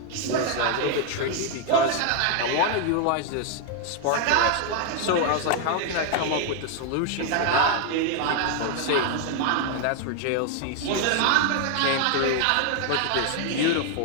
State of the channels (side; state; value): both; different; correlation 0.00